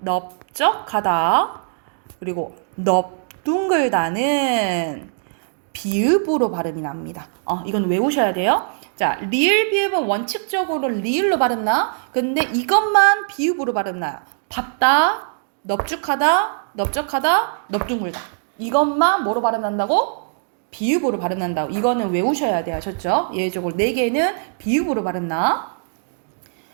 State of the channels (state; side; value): silent; left; digital silence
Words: 그리고 넙둥글다는 비읍으로 발음이 납니다. 이건 외우셔야 돼요. 자, 리을 비읍은 원칙적으로 리을로 발음나. 근데 이것만 비읍으로 발음나요. 밟다, 넙죽하다, 넓적하다, 넙둥글다. 이것만 뭐로 발음난다고? 비읍으로 발음난다고. 이거는 외우셔야 돼요. 아셨죠? 예외적으로 4개는 비읍으로 발음나.